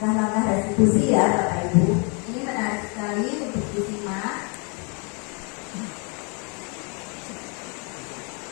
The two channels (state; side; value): quieter; right; 34.9 dB